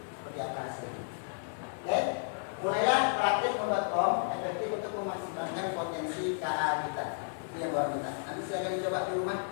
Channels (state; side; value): silent; right; digital silence